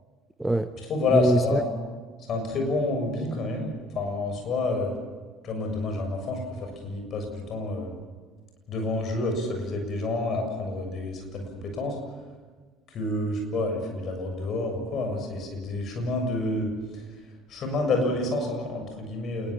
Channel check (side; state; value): both; normal; correlation 0.55